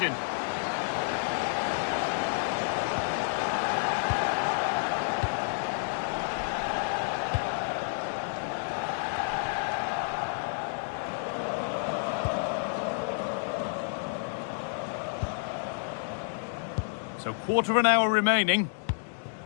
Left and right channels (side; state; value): right; silent; digital silence